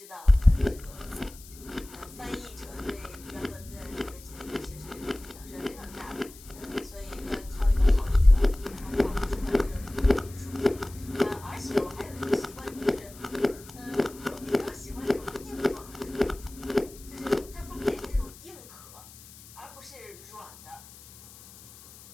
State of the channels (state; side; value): noise; left; hiss, 20 dB below the sound